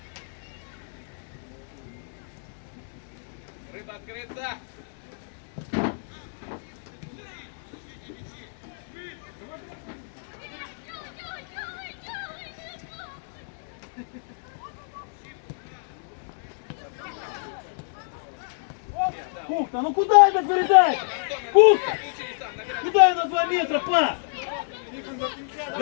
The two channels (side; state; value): right; silent; digital silence